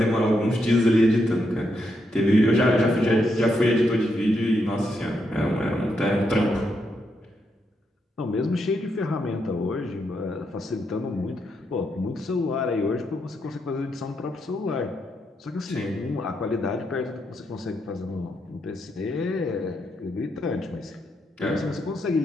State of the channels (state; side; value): normal; both; correlation 0.80